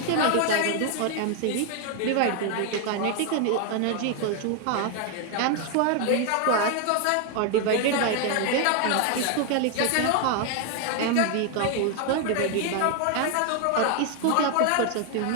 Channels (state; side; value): different; both; correlation 0.01